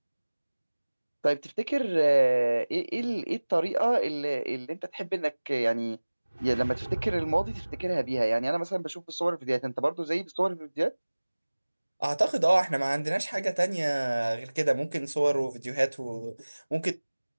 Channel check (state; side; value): inverted; both; correlation -1.00